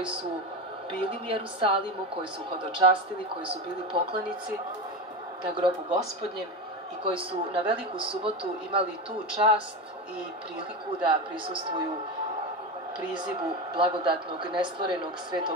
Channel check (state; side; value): normal; both; correlation 0.20